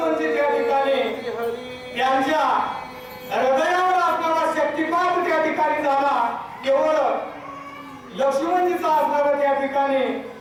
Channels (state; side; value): identical; both; correlation 1.00